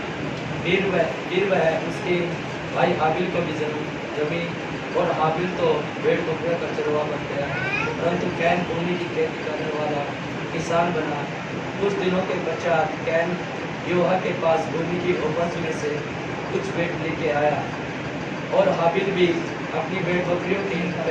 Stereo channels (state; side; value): identical; both; correlation 1.00